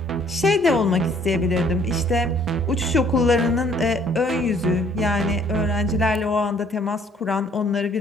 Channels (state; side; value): normal; both; correlation 0.61